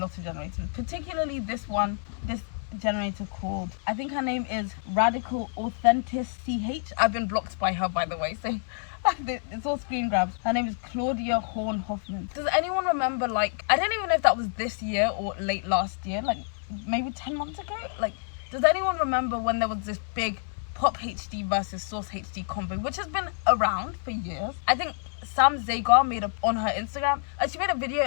of generators, particularly this generator called, I think her name is Radical Authentic CH. I've been blocked by her, by the way, so it's all screen grabs. Her name is Claudia Horn Hoffman. Does anyone remember, like, I don't even know if that was this year or late last year, like maybe 10 months ago? Like, does anyone remember when there was this big Pop HD versus Source HD combo, which has been around for years? I think Sam Zagar made on her Instagram, she made a video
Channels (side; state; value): right; silent; 59 dB below the other